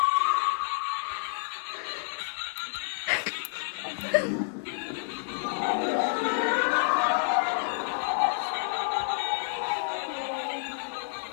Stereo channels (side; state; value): right; silent; digital silence